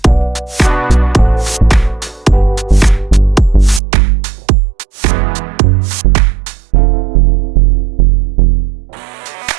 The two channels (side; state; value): left; drops out; at 3.8 s